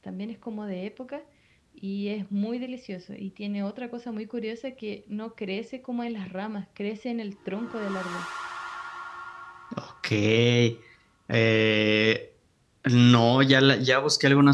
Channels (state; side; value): identical; both; correlation 1.00